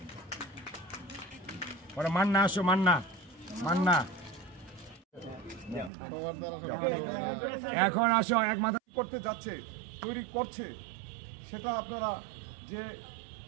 পরে মান্না আসো, মান্না মান্না এখন আসো এক মাথা করতে যাচ্ছে, তৈরি করছে, সেটা আপনারা যে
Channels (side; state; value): left; drops out; at 5.9 s